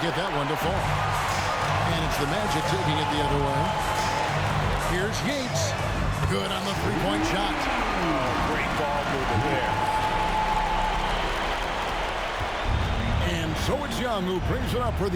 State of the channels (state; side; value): identical; both; correlation 1.00